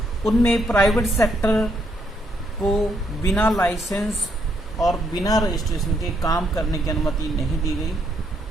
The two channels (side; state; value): both; normal; correlation 0.74